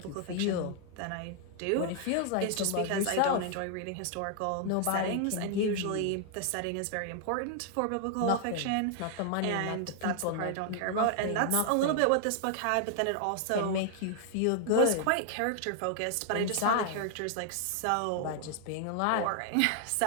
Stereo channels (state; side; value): different; both; correlation 0.00